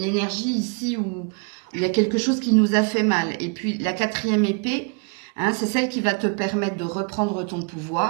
énergie ici où il y a quelque chose qui nous a fait mal. Et puis la 4e épée, hein, c'est celle qui va te permettre de reprendre ton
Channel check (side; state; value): left; quieter; 37.7 dB